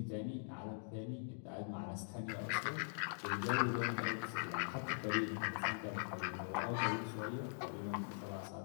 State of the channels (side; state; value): right; silent; digital silence